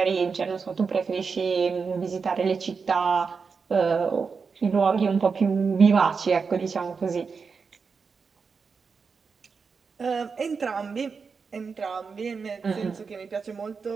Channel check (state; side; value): quieter; left; 5.3 dB